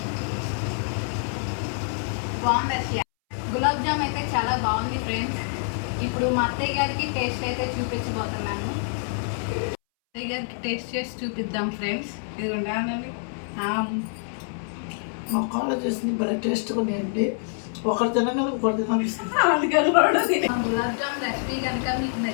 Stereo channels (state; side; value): silent; right; 61 dB below the other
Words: బాగుంది. గులాబ్ జామ్ అయితే చాలా బాగుంది ఫ్రెండ్స్. ఇప్పుడు మా అత్తయ్య గారికి టేస్ట్ అయితే చూపించబోతున్నాను. అత్తయ్య గారికి టేస్ట్ చేసి చూపిద్దాం ఫ్రెండ్స్. ఇదిగోండి మా కాలేజ్ చేసింది భలే టేస్ట్గా ఉన్నాయండి. ఒకటి తినగానే ఒకటి తినాలిస్తుంది. గులాబ్ జామ్ రెసిపీ కనుక మీకు